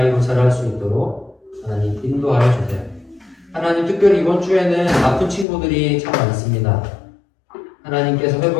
자랄 수 있도록 하나님 인도하여 주세요. 하나님, 특별히 이번 주에는 아픈 친구들이 참 많습니다. 하나님께서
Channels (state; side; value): drops out; right; at 5.5 s